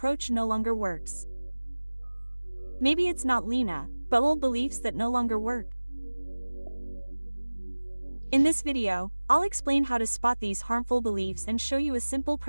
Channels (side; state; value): both; inverted; correlation -1.00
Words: no longer works. Maybe it's not Lena, but old beliefs that no longer work. In this video, I'll explain how to spot these harmful beliefs and show you a simple